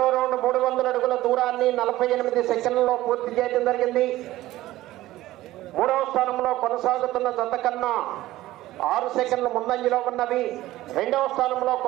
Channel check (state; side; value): quieter; left; 16.1 dB